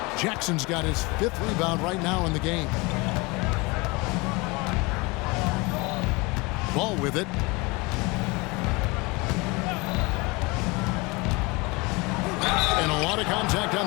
Jackson's got his 5th rebound right now in the game. Ball with it. And a lot of contact on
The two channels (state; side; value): quieter; right; 25.7 dB